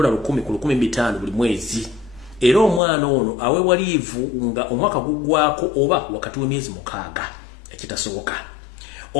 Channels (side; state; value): right; drops out; at 2.8 s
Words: ku $15,000 buli mwezi era omwana ono aweebwa liivu nga omwaka guggwaako oba wakati w'emyezi 6 ekitasoboka.